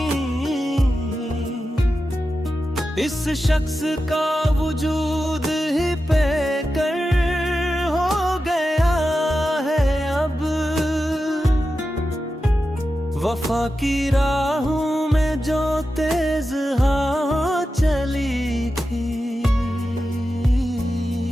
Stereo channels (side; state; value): both; normal; correlation 0.91